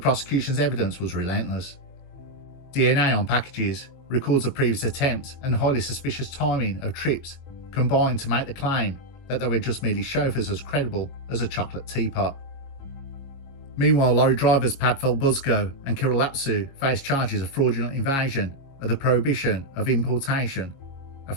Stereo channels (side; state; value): right; late; 22 ms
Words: evidence was relentless. DNA on packages, records of previous attempts, and highly suspicious timing of trips combined to make the claim that they were just merely chauffeurs as credible as a chocolate teapot. Meanwhile, lorry drivers Padfel Buzko and Kirill Lapsu faced charges of fraudulent invasion of the prohibition of importation, a